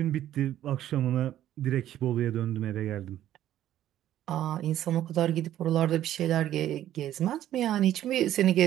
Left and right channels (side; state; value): left; quieter; 12.3 dB